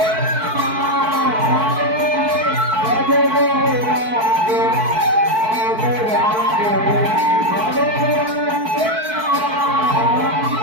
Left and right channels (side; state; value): left; late; 4.6 ms